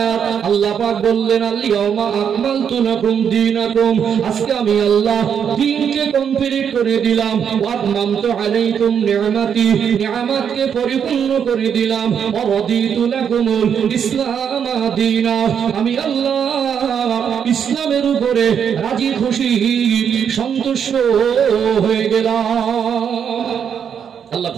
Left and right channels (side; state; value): left; quieter; 7.8 dB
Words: আয়াত। আল্লাহ পাক বললেন, আল ইয়াউমা আকমালতু লাকুম দীনাকুম, আজকে আমি আল্লাহ দ্বীনকে কমপ্লিট করে দিলাম। ওয়া আতমামতু আলাইকুম নি'মাতি, নিয়ামতকে পরিপূর্ণ করে দিলাম। ওয়া রাদিতু লাকুমুল ইসলাম দীনা, আমি আল্লাহ ইসলামের উপরে রাজি খুশি সন্তুষ্ট হয়ে গেলাম। আল্লাহ